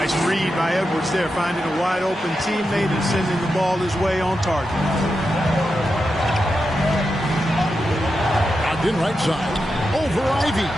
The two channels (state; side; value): normal; both; correlation 0.88